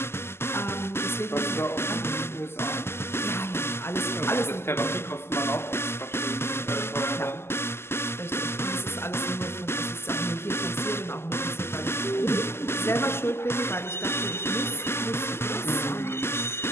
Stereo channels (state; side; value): late; right; 0.12 ms